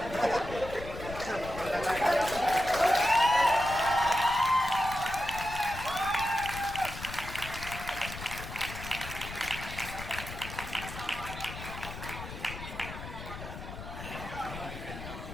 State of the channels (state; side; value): noise; left; rumble, 10 dB below the sound